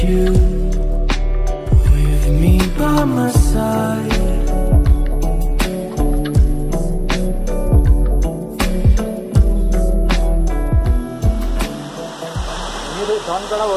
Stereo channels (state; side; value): identical; both; correlation 1.00